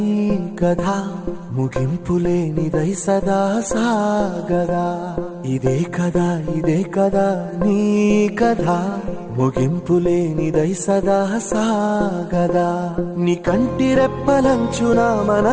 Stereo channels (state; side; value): identical; both; correlation 1.00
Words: కథ, ముగింపులేనిదై సదా సాగదా. ఇదే కదా నీ కథ, ముగింపులేనిదై సదా సాగదా. నీ కంటి రెప్పలంచున